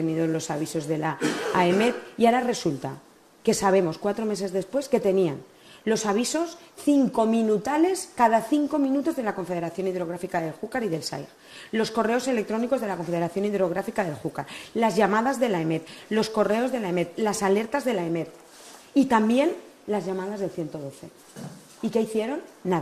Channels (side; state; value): both; identical; correlation 1.00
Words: los avisos de la AEMET, y ahora resulta que sabemos 4 meses después que tenían los avisos 5 minutales cada 5 minutos de la Confederación Hidrográfica del Júcar y del SAIG, los correos electrónicos de la Confederación Hidrográfica del Júcar, las llamadas de la EMET, los correos de la EMET, las alertas de la EMET y también las llamadas del 112. ¿Y qué hicieron?